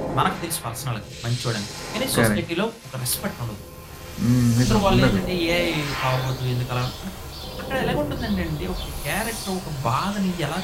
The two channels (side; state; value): both; identical; correlation 1.00